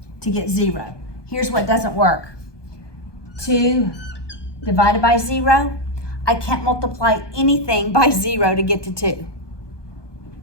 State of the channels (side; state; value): right; late; 1.2 ms